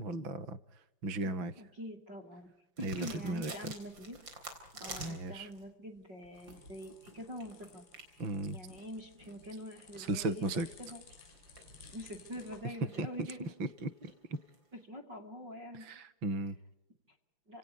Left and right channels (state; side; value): late; left; 5.7 ms